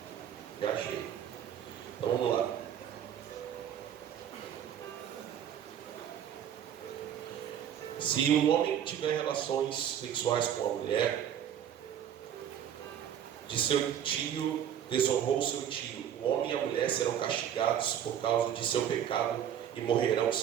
Já achei. Então vamos lá. Se um homem tiver relações sexuais com a mulher de seu tio, desonrou seu tio, o homem e a mulher serão castigados por causa de seu pecado e morrerão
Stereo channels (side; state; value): left; quieter; 9.5 dB